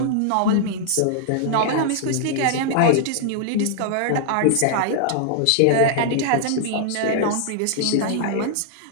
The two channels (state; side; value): different; both; correlation -0.01